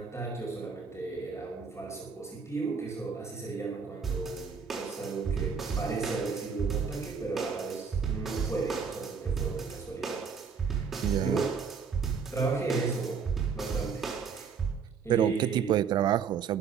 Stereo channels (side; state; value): left; quieter; 5.9 dB